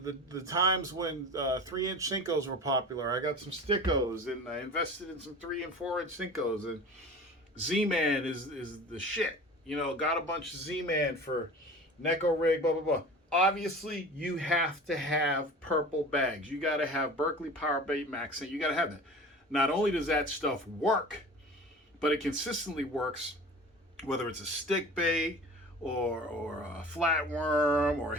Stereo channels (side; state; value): both; normal; correlation 0.38